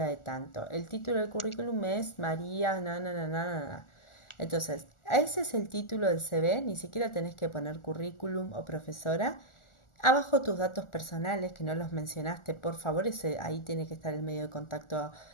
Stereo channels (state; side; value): late; right; 1.4 ms